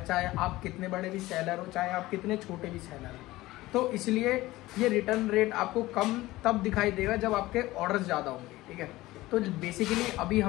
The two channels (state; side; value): quieter; right; 18.0 dB